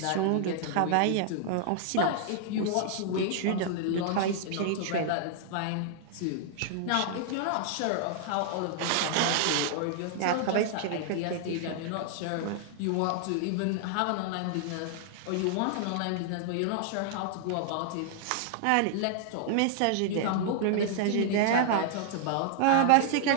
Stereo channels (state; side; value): different; both; correlation -0.01